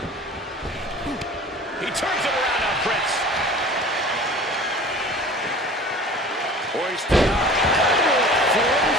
He turns it around on Prince. Hoisted up.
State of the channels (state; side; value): normal; both; correlation 0.42